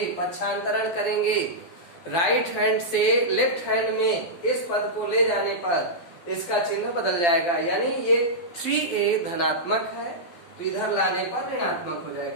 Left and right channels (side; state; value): right; late; 12 ms